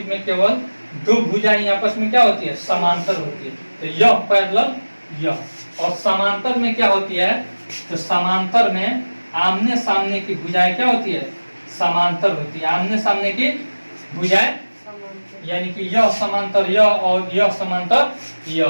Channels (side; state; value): both; inverted; correlation -1.00